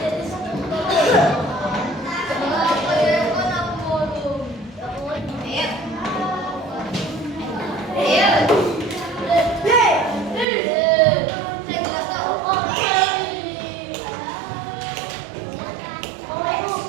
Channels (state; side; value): drops out; left; at 10.5 s